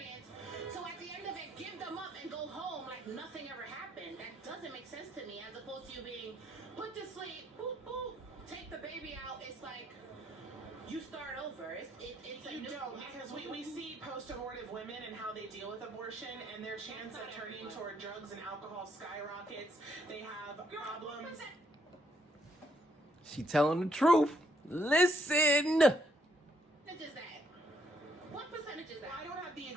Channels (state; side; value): normal; both; correlation 0.72